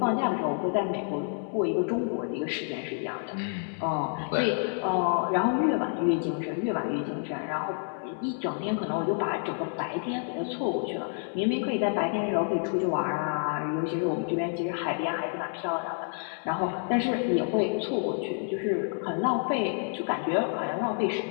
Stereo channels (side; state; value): right; silent; 56 dB below the other